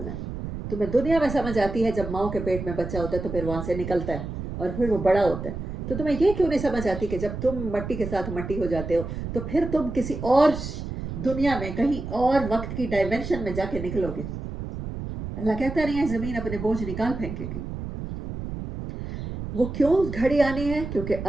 ہے، تمہیں دنیا میں سمجھ آتی ہے جب ماؤں کے پیٹ میں بچہ ہوتا ہے تو پھر وہاں سے نکلتا ہے اور پھر وہ بڑا ہوتا ہے، تو تمہیں یہ کیوں نہیں سمجھ آتی کہ جب تم مٹی کے ساتھ مٹی ہو جاتے ہو تو پھر تم کسی اور دنیا میں کہیں اور وقت کی ڈائمینشن میں جا کے نکلو گے۔ اللہ کہتا نہیں ہے زمین اپنے بوجھ نکال پھینکے گی۔ وہ کیوں گھڑی آنی ہے؟ کیونکہ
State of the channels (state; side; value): noise; right; rumble, 7 dB below the sound